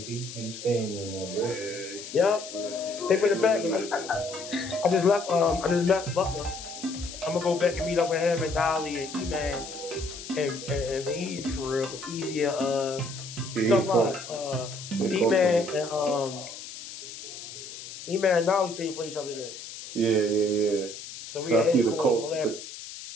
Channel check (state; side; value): noise; left; hiss, 12 dB below the sound